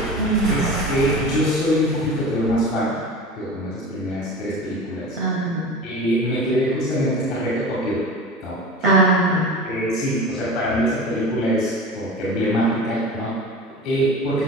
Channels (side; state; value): both; normal; correlation 0.34